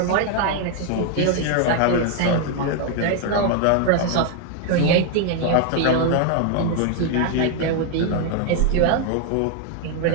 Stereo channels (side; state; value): both; different; correlation 0.00